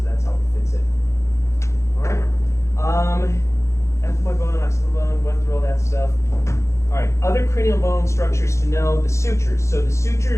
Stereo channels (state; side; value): late; right; 0.14 ms